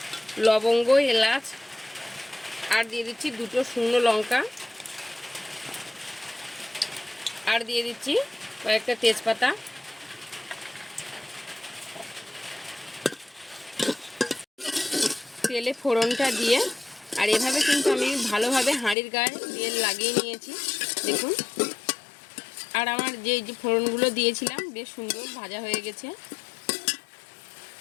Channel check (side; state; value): right; drops out; at 18.9 s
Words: লবঙ্গ, এলাচ, আর দিয়ে দিচ্ছি দুটো শুকনো লঙ্কা, আর দিয়ে দিচ্ছি কয়েকটা তেজপাতা। তেলে ফোড়নটা দিয়ে, আর এভাবে কিন্তু আমি ভালোভাবে হাঁড়ির গায়ে তেল লাগিয়ে নিয়েছি দেখুন। আর আমার যে ফোড়নগুলো দিয়েছিলাম বেশ সুন্দর ভাজা হয়ে গেছে।